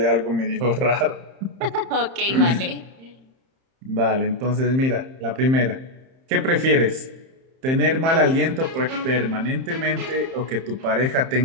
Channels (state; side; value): late; left; 31 ms